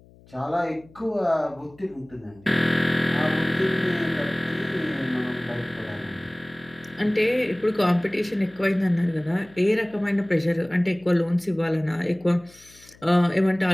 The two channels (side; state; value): left; noise; hum, 26 dB below the sound